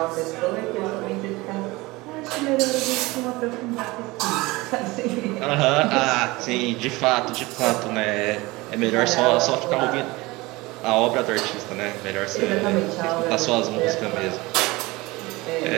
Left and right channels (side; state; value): left; quieter; 21.8 dB